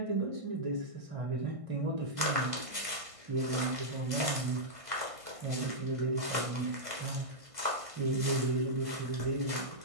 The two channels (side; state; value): left; late; 1.6 ms